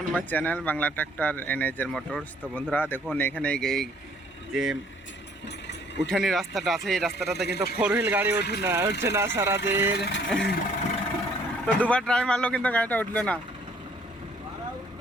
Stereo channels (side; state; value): both; normal; correlation 0.61